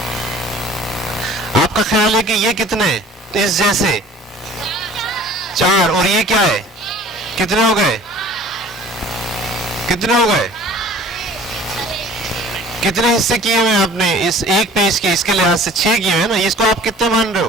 आपका ख्याल है कि ये कितने इस जैसे 4 और ये क्या है, कितने हो गए, कितने हो गए, कितने हिस्से किए हुए आपने इस एक पेज के, इसके लिहाज से 6 किए हुए ना, इसको आप कितने मान रहे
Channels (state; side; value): normal; both; correlation 0.48